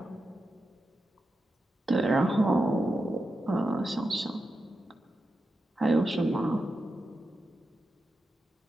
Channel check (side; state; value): both; normal; correlation 0.89